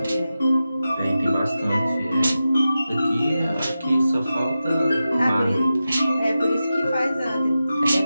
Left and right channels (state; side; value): inverted; both; correlation -0.92